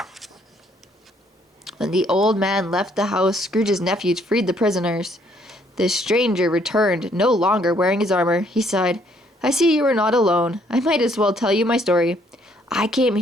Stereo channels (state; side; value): normal; both; correlation 0.66